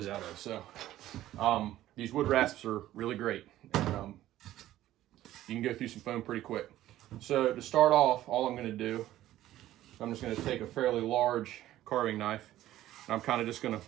out of. So these wood rasps are really great. And, you can go through some foam pretty quick. So to start off, all I'm going to do, I'm just going to take a fairly large carving knife, and I'm kind of just going to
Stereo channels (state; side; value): quieter; left; 14.1 dB